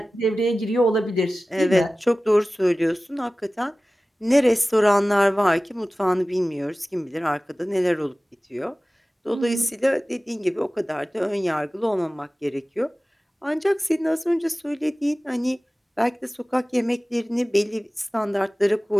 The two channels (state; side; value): normal; both; correlation 0.97